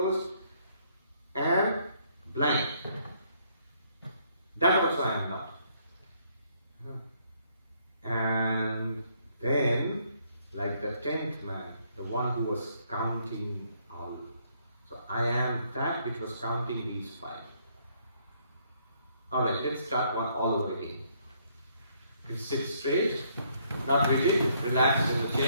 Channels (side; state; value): both; inverted; correlation -0.69